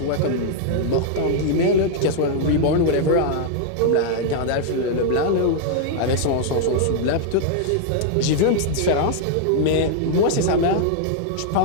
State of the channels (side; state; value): both; different; correlation -0.01